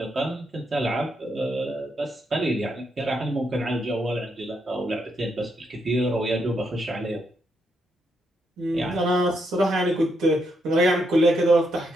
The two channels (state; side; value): normal; both; correlation 0.79